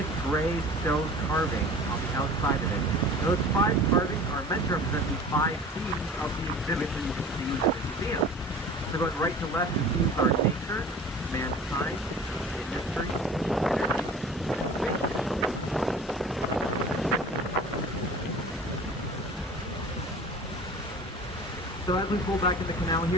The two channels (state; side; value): normal; both; correlation 0.42